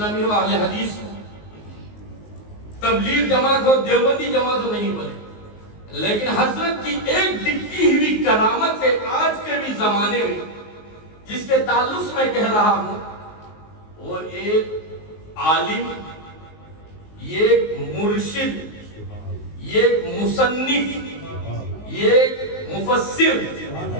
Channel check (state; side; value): late; right; 19 ms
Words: ہو، اہل حدیث ہو، تبلیغ جماعت ہو، دیوبندی جماعت ہو، نہیں بولے، لیکن حضرت کی ایک دکھتی ہوئی کرامت ہے آج کے بھی زمانے میں، جس کے تعلق سے میں کہہ رہا ہوں، وہ ایک عالم، یہ ایک مرشد، یہ ایک مصنف، یہ ایک مفسر،